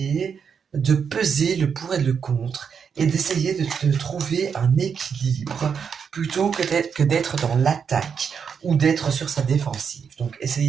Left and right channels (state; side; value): quieter; left; 6.7 dB